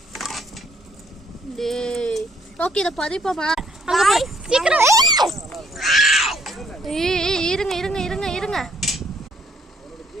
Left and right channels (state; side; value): normal; both; correlation 0.67